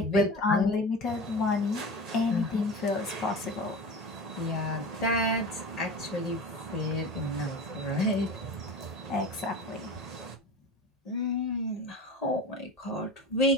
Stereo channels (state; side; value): normal; both; correlation 0.31